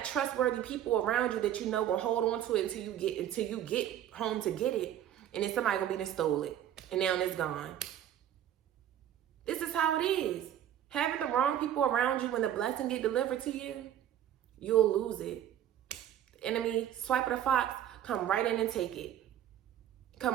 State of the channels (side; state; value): left; quieter; 10.9 dB